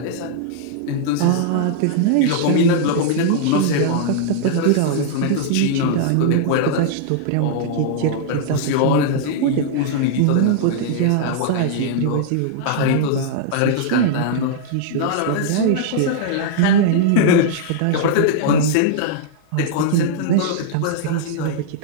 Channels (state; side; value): different; both; correlation -0.01